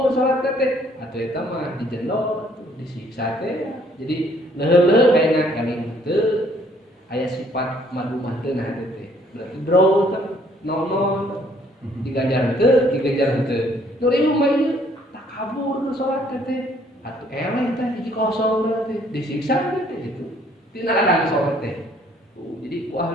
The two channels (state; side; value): normal; both; correlation 0.63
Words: salat teh atuh eta mah dijendol disiksa teh jadi leuh-leuh ayeuna eling teu aya sifat madu mah teu nah teh berarti draw teh non diganjar teu diganjar teu nu riung mah ieu tak kabur salat teh atuh eleh teh hiji kosong teh disiksa teh gitu tina adang salat teh jadi ku